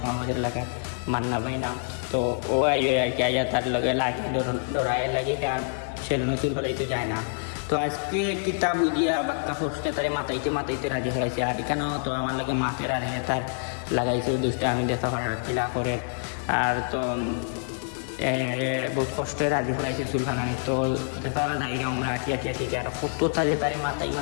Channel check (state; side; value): silent; right; 60 dB below the other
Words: আমাদের এলাকায় মান্না ভাই নাম। তো ও আইয়ে আর কি আইয়া তার লগে লাগে ডরায় লাগে, আর সেলুনের চুল ফেলাইতে যায় না। তো আজকে কিতাব দিয়া বাক্কা ফসকে তারে মাথাইতে রাজি ফেলাইছে, আর এখানেও তো আমার লাগে মাথের আর তার লাগাইছে দুষ্টা আমি দেখা করার কিলা করে। আর তো বহুত কষ্টে রাজি ফেলাইছে চুল ফালানি। তো তারা যাইরা আমরা আটিয়া আর কত তাদের তারে